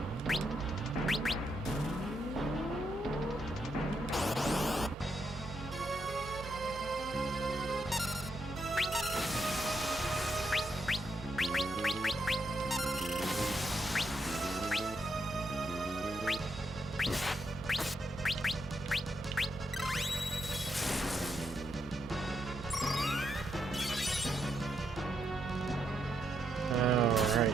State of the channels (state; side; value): normal; both; correlation 0.80